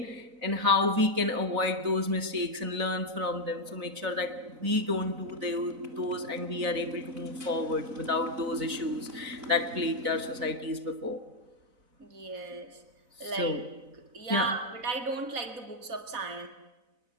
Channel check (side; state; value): left; late; 4.0 ms